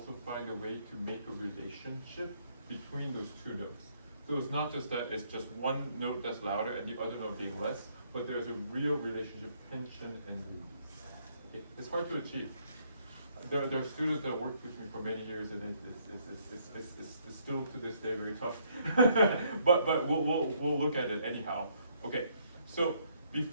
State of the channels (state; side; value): inverted; both; correlation -0.69